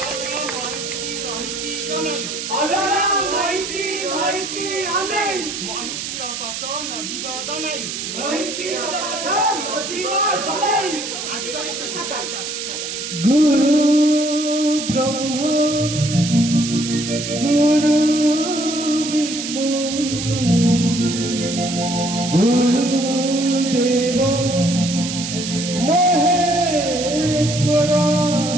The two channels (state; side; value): noise; right; hiss, 6 dB below the sound